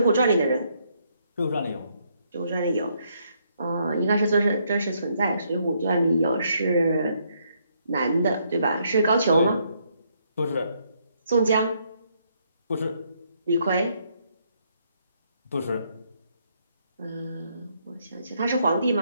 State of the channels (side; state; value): both; inverted; correlation -0.73